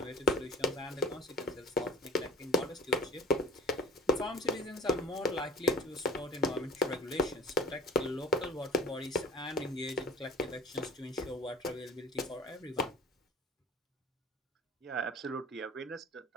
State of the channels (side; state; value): both; normal; correlation 0.46